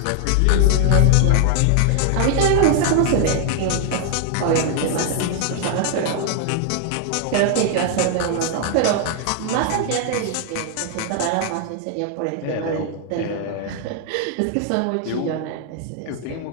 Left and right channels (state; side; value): different; both; correlation 0.00